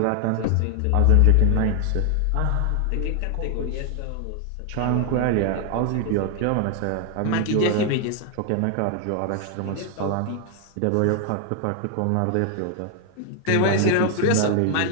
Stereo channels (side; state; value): both; different; correlation 0.00